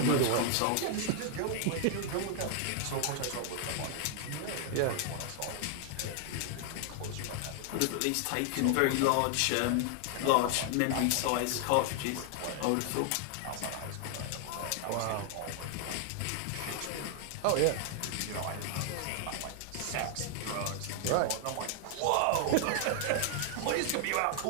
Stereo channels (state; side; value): different; both; correlation 0.00